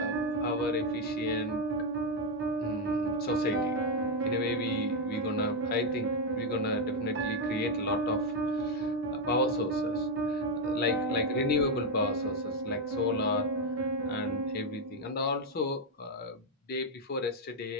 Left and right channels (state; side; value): normal; both; correlation 0.03